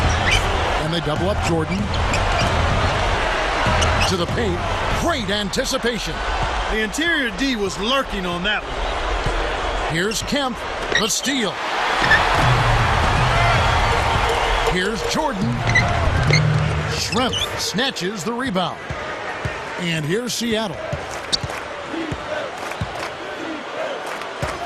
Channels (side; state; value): both; identical; correlation 1.00